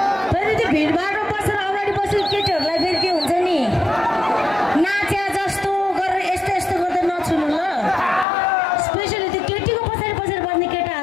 फेरि त्यो भिडभाडमा बसेर अगाडि बसेको केटीहरूलाई फेरि के हुन्छ नि नाचे जस्तो गरेर यस्तो यस्तो गर्दै नछुनु ल स्पेसली त्यो केटीको पछाडि पछाडि बस्ने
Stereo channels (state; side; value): drops out; right; at 8.2 s